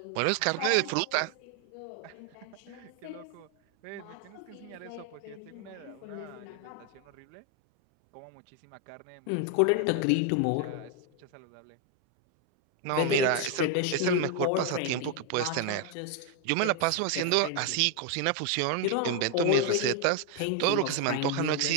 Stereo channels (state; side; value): different; both; correlation 0.01